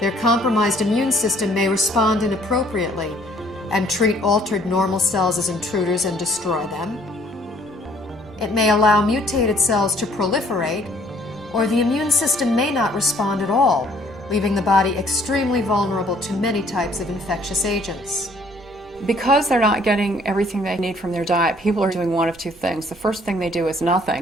compromised immune system may respond inappropriately and treat altered normal cells as intruders and destroy them. It may allow mutated cells to proliferate, or the immune system may not respond at all, leaving the body extremely vulnerable to many types of infectious agents. Because they're not getting everything they need from their diet, people are doing one of two things. The first thing they do is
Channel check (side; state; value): both; normal; correlation 0.60